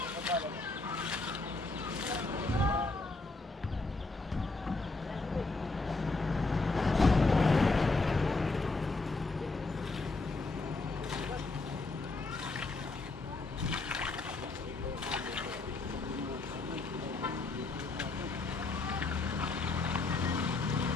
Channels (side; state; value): right; quieter; 3.5 dB